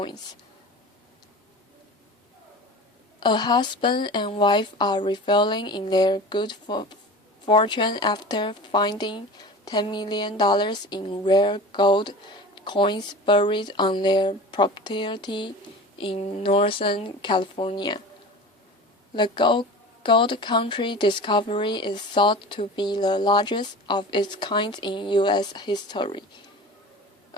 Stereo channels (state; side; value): normal; both; correlation 0.35